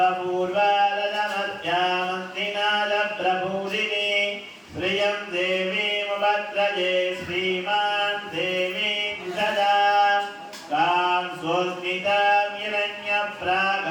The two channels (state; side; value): identical; both; correlation 1.00